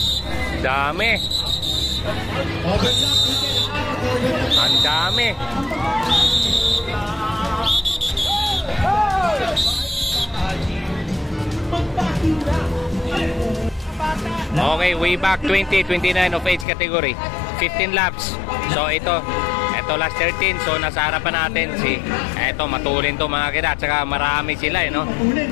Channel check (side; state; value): right; drops out; at 16.7 s